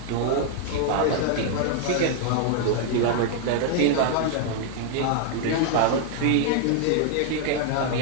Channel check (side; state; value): both; different; correlation 0.00